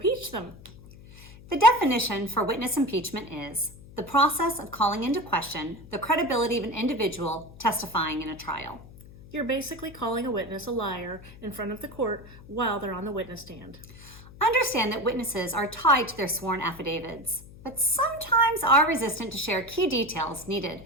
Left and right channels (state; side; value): noise; left; hum, 19 dB below the sound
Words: them. The definition for witness impeachment is the process of calling into question the credibility of an individual testifying in a trial. You're basically calling a witness a liar in front of the court while they're on the witness stand. Understand that witnesses are tied to their sworn affidavits, but sometimes are resistant to share key details needed